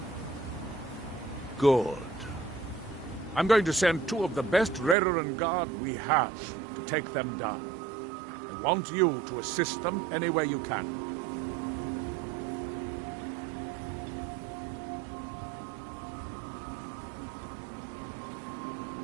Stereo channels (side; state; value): left; drops out; at 5.0 s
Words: Good. I'm going to send 2 of the best Redoran Guard we have to take them down. I want you to assist them any way you can.